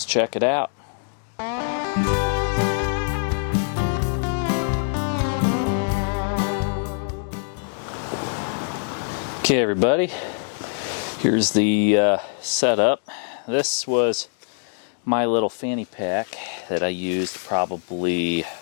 check it out. Okay everybody, here's the setup. This was my little fanny pack that I used probably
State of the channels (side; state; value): right; silent; digital silence